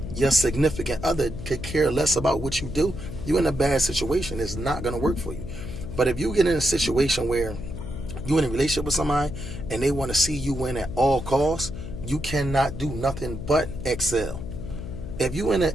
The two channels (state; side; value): noise; left; hum, 9 dB below the sound